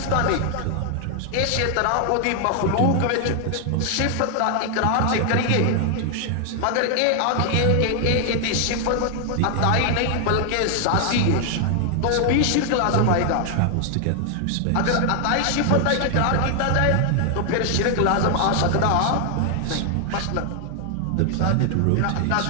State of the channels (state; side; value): different; both; correlation 0.00